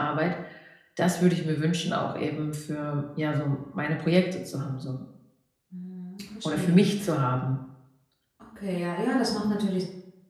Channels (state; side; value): identical; both; correlation 1.00